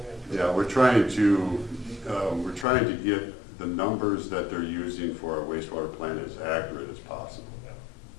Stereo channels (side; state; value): right; drops out; at 2.7 s